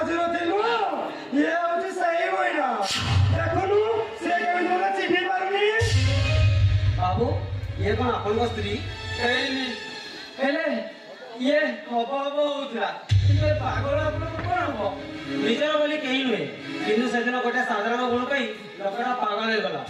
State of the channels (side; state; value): both; identical; correlation 1.00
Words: ନଥିଲୁ ଇଏ ହଉଛି ସେଇ ମହିଳା ଦେଖୁନୁ ସେ କେମିତି ମୋତେ ଚିହ୍ନି ପାରୁନି ବାବୁ ଇଏ କଣ ଆପଣଙ୍କ ସ୍ତ୍ରୀ ହେଇନି ହେଲେ ଇଏ ହବ ହବ ହଉଥିଲା କିନ୍ତୁ ଏ ପାଗଳ ଆପଣଙ୍କୁ କଣ ହବ ନିଜର ବୋଲି କେହି ନୁହେଁ କିନ୍ତୁ ସେଦିନ ଗୋଟେ ସାଧାରଣ ଗୁଣ ପାଇଁ ଲୋକଟା ପାଗଳ ହେଇଗଲା